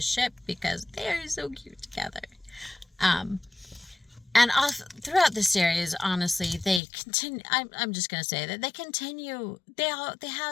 ship because they are so cute together. And throughout the series, honestly, they continue. I'm just gonna say that they continue. They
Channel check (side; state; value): right; drops out; at 6.8 s